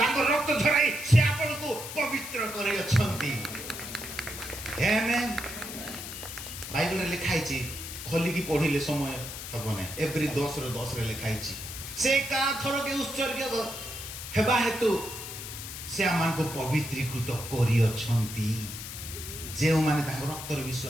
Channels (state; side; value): noise; left; hiss, 9 dB below the sound